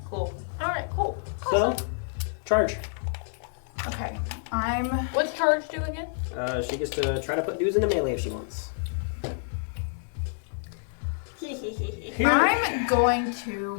cool. Alright, cool. So, charge. Okay. What's charge do again? She gets to try to put dudes into melee if she wants. I'm going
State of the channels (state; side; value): silent; right; digital silence